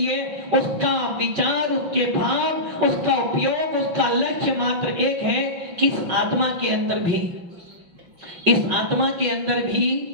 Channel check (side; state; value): left; late; 5.8 ms